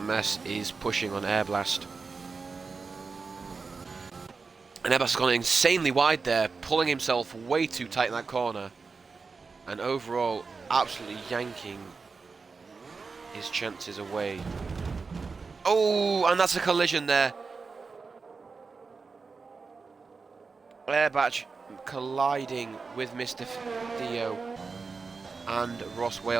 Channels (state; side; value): quieter; left; 4.6 dB